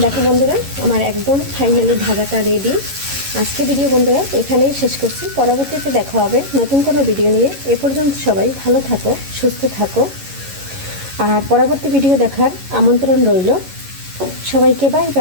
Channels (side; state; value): left; late; 11 ms